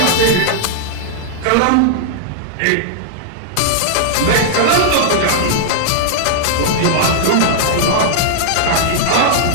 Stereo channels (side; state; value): both; different; correlation -0.01